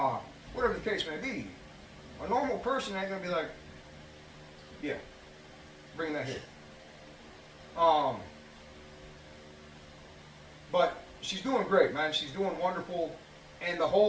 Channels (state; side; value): identical; both; correlation 1.00